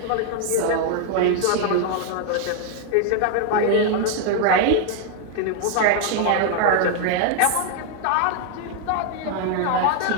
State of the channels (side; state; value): both; different; correlation 0.00